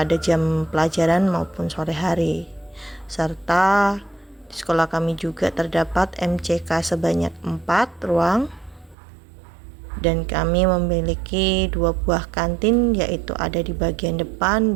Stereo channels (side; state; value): left; drops out; at 9.0 s